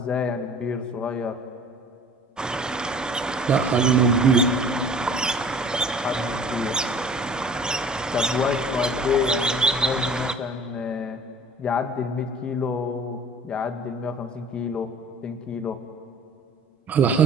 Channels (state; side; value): normal; both; correlation 0.46